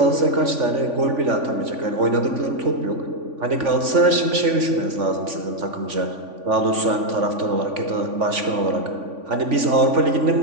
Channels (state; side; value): late; left; 3.5 ms